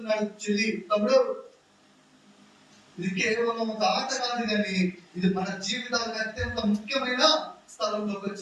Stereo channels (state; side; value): identical; both; correlation 1.00